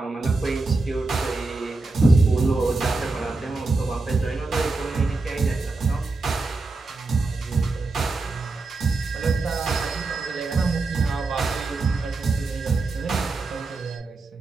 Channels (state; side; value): quieter; left; 3.5 dB